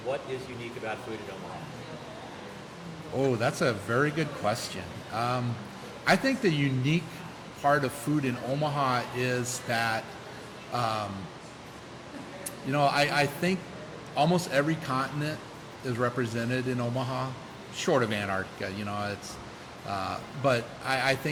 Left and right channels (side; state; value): both; identical; correlation 1.00